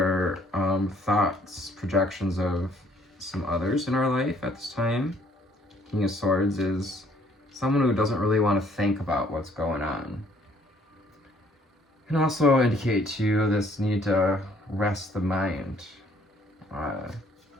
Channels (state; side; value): normal; both; correlation 0.62